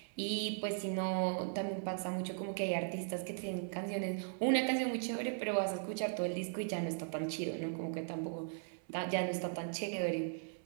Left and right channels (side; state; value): left; silent; 52 dB below the other